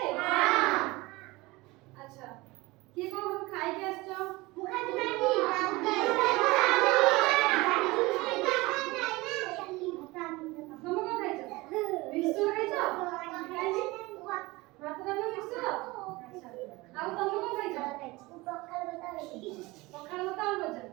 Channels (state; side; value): quieter; left; 21.9 dB